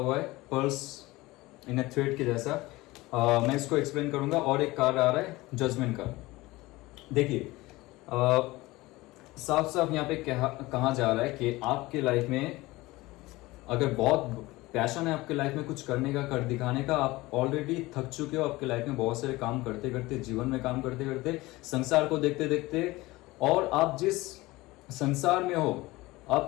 है, पर्ल्स इन ए थ्रेड के जैसा। मैं इसको एक्सप्लेन करूंगा। और एक कार्ड आ रहा है जजमेंट का। देखिए साफ साफ यहाँ पे कहा जा रहा है कि आपके लाइफ में अगर बहुत पैशन है आपके लाइफ में कुछ करने का, कर दिखाने का, आप ऑलरेडी थक चुके हो आपके लाइफ में बहुत सारे काम करते करते, जीवन में काम करते करते, संसार को देखते देखते, और आप जिस संसार में हो,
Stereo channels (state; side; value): quieter; right; 20.1 dB